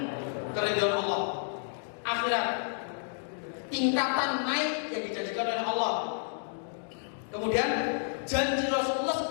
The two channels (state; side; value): silent; right; digital silence